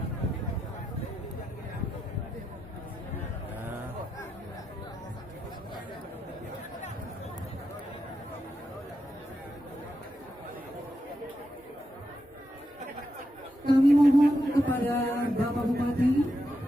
Kami mohon kepada Bapak Bupati,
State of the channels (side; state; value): both; normal; correlation 0.86